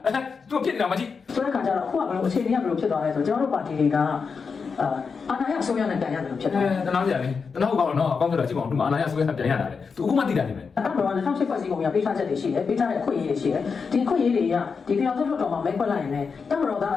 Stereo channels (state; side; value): quieter; right; 5.4 dB